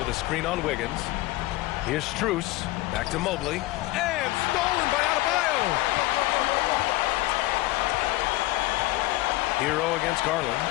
a screen on Wiggins. Here's Strus. Back to Mobley. And stolen by Adebayo. Hero against Garland.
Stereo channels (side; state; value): right; quieter; 18.5 dB